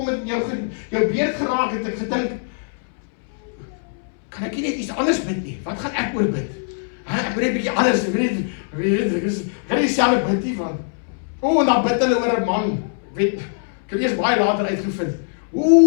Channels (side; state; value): right; silent; 64 dB below the other